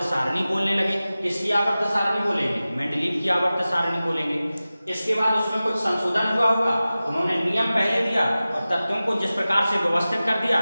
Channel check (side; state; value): both; inverted; correlation -0.96